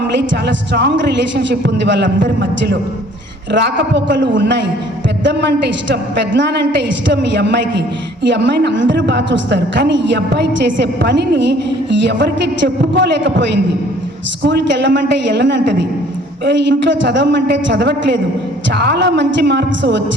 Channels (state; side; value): normal; both; correlation 0.56